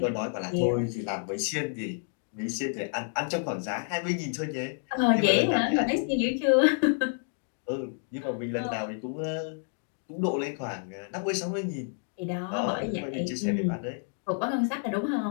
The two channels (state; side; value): silent; right; 58 dB below the other